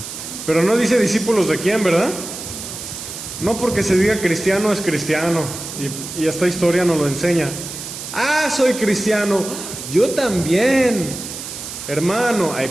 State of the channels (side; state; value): right; noise; hiss, 9 dB below the sound